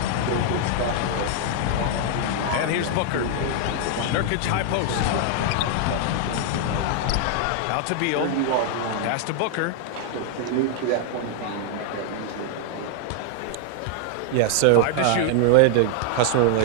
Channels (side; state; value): both; different; correlation 0.00